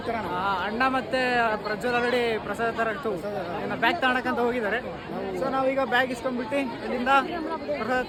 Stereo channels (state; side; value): identical; both; correlation 1.00